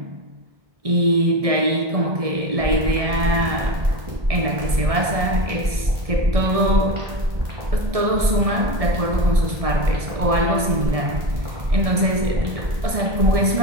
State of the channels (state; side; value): late; left; 1.6 ms